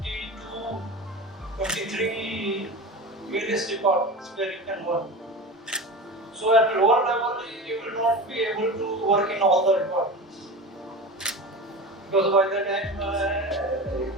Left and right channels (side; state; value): both; normal; correlation 0.29